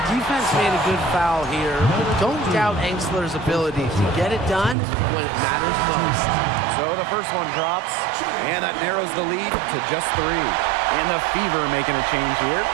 Defense made a good foul here, but don't doubt Angstler's ability to get it done when it matters most. So the first one drops, and that narrows the lead to just 3. And the Fever making a change here.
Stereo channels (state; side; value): drops out; left; at 4.8 s